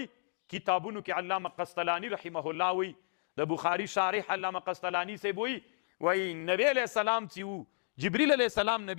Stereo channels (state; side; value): silent; right; digital silence